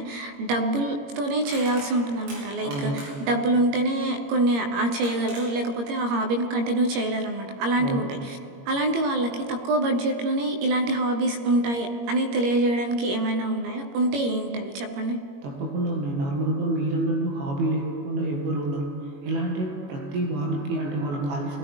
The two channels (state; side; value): late; left; 21 ms